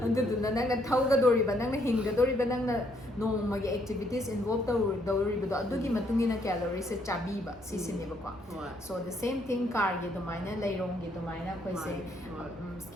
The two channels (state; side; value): noise; right; hum, 25 dB below the sound